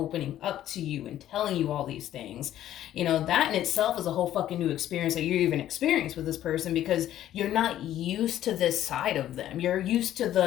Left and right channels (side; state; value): right; quieter; 12.3 dB